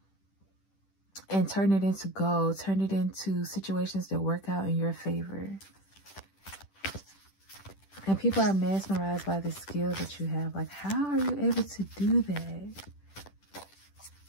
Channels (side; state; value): right; late; 10 ms